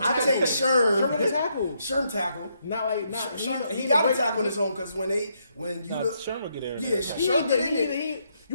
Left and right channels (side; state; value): both; inverted; correlation -0.76